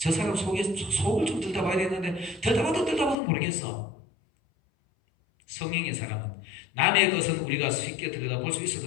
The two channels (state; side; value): drops out; right; at 3.2 s